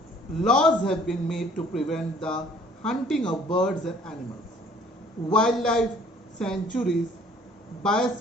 Laws have been made to prevent the hunting of birds and animals. Wildlife sanctuaries,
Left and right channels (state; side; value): normal; both; correlation 0.56